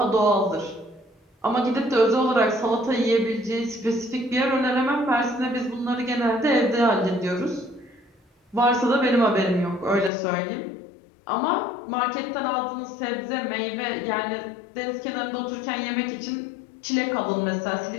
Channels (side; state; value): right; drops out; at 10.1 s